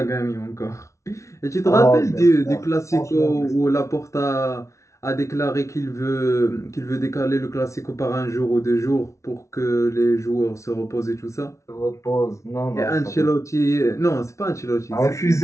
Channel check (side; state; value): right; late; 0.14 ms